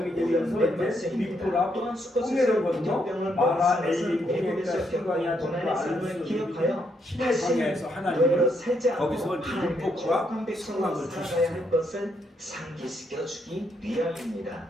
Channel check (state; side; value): normal; both; correlation 0.76